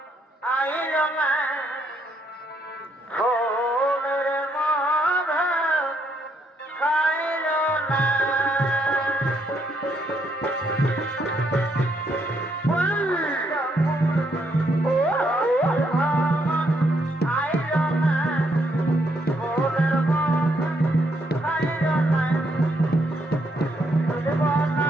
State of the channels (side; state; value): both; normal; correlation 0.74